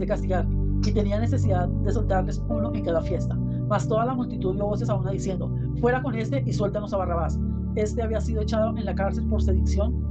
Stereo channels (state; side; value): identical; both; correlation 1.00